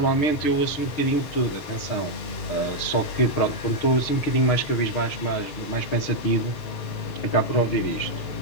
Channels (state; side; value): late; right; 6.5 ms